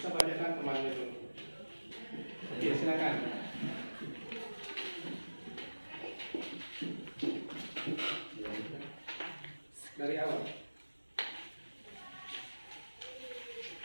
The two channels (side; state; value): both; inverted; correlation -1.00